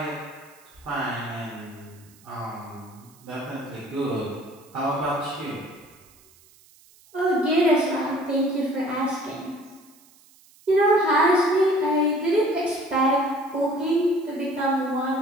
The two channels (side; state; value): right; noise; hiss, 28 dB below the sound